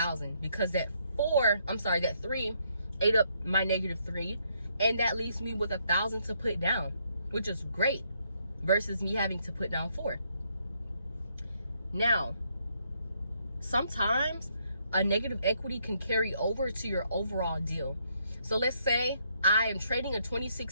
because that 3 ate up my -3, and that leaves me with $1,000 to put down, which is great, versus me having to put down 4. Now, sometimes a negative equity can carry over to your overall deal. So let's say I am trading a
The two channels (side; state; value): both; inverted; correlation -0.72